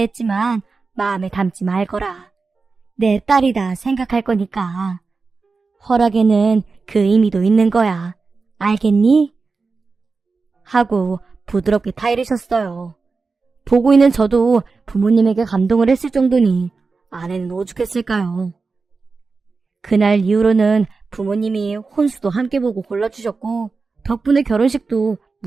마음에 담지 말거라. 내 딸이다 생각할 거니까. 허락에는 그 의미도 있는 거야. 알겠니? 하고 부드럽게 타이르셨어요. 보고 있는 저도 부모님에게 감동을 했을 정도니 아내는 오죽했을까요? 그날 이후로는 부모님이 혼수도 함께 보고 골라주셨고 덕분에 결혼식도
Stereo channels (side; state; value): left; quieter; 4.3 dB